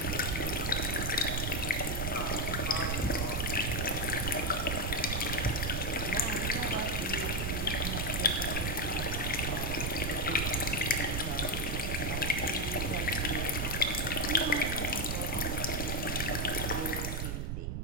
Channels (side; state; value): right; noise; rumble, 1 dB below the sound